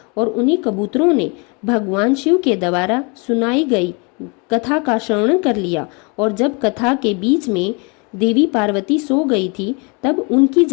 और उन्हीं कबूतरों ने भगवान शिव के द्वारा सुनाई गई कथा का श्रवण कर लिया। और जब कथा के बीच में देवी पार्वती सो गई थी तब उनकी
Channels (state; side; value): quieter; right; 31.8 dB